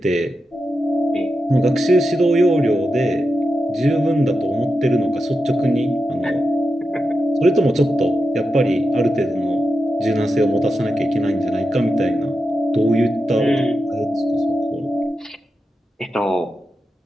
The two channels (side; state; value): both; normal; correlation 0.89